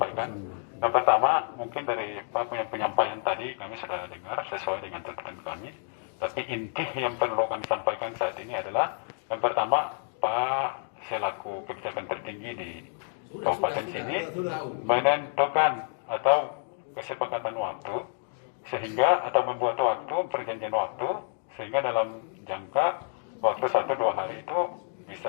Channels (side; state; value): right; silent; digital silence